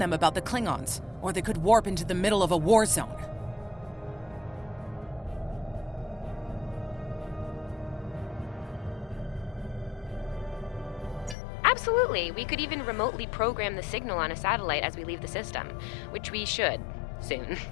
them about the Klingons, or they could warp into the middle of a war zone. Absolutely. We could even remotely program the signal on a satellite as we leave the system, which we should soon.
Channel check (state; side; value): drops out; right; at 11.4 s